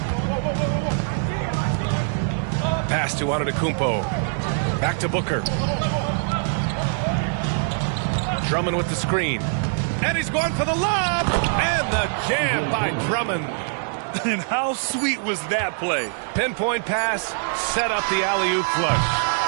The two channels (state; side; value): silent; left; digital silence